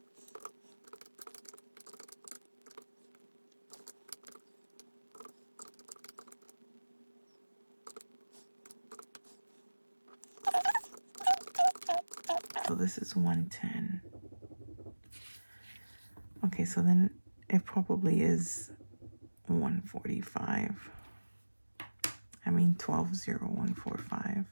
So this is 110. Okay, so then it probably is 145. I mean 120145.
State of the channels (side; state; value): both; inverted; correlation -1.00